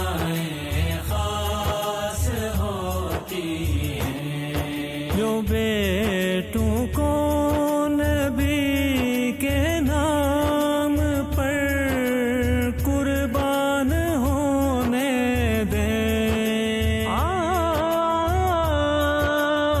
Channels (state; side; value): identical; both; correlation 1.00